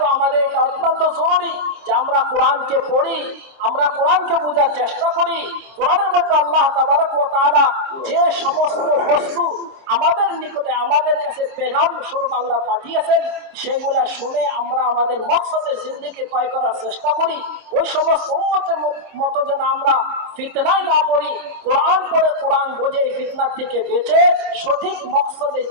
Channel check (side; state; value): left; late; 26 ms